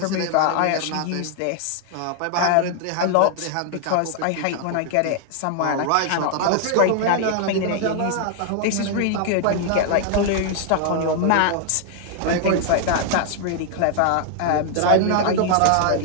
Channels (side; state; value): both; different; correlation 0.00